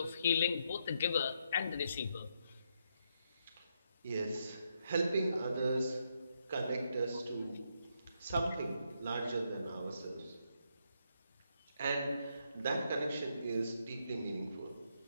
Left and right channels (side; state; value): both; inverted; correlation -0.78